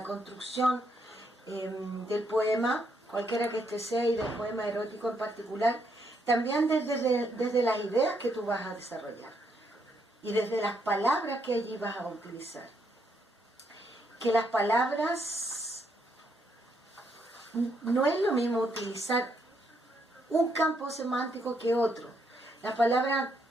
del poema, cualquiera que este sea, y del poema erótico en particular, también desde las ideas que tú vas a desarrollar y desde las palabras que allí vas a utilizar. Que las palabras, no es lo mismo utilizar un campo semántico que otro. Las palabras,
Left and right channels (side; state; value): both; normal; correlation 0.75